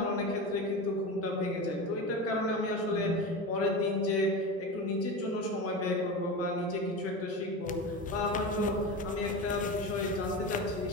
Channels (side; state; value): both; normal; correlation 0.25